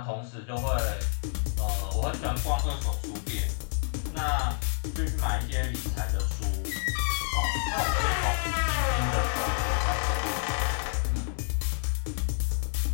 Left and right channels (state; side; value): silent; right; digital silence